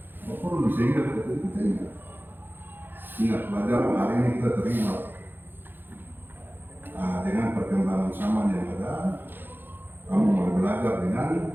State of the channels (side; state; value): left; late; 0.097 ms